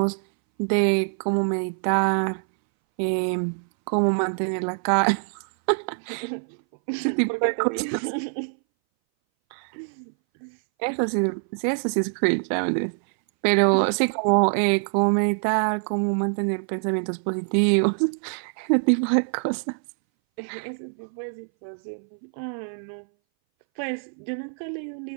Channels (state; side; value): silent; left; 60 dB below the other